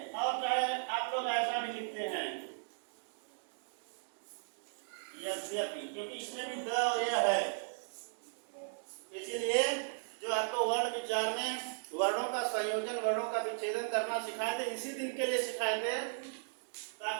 और चाहे आप लोग ऐसा भी लिखते हैं यद्यपि, क्योंकि इसमें भी द और यह है, इसीलिए जो आपको वर्ण विचार में वर्णों का संयोजन, वर्णों का विच्छेदन करना सिखाए थे, इसी दिन के लिए सिखाए थे,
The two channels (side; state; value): left; silent; digital silence